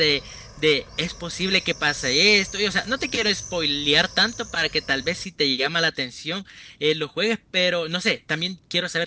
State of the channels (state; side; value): identical; both; correlation 1.00